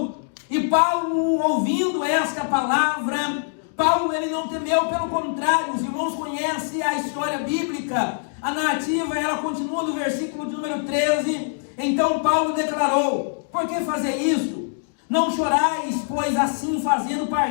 E Paulo, ouvindo esta palavra, Paulo ele não temeu, pelo contrário, os irmãos conhecem a história bíblica, a narrativa, ela continua no versículo de número 13. Então Paulo declarou: por que fazer isto? Não chorais, pois assim fazendo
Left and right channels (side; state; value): right; silent; digital silence